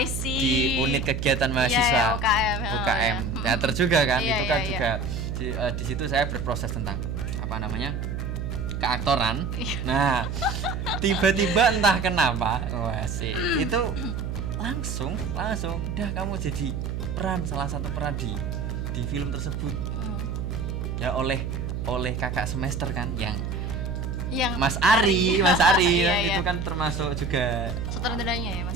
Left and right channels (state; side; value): noise; right; hum, 3 dB below the sound